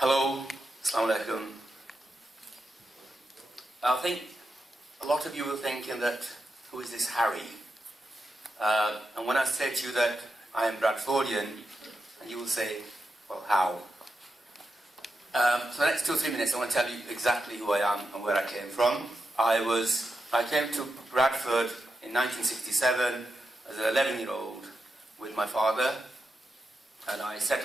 assalamu alaikum. I think a lot of you are thinking that, who is this Harry? And when I say to you that I am Bradfordian, and you will say, well, how? So the next 2 or 3 minutes I want to tell you exactly who I am and where I came from. I came to Bradford in 1967 as an 11-year-old with my father, and I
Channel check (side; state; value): both; normal; correlation 0.87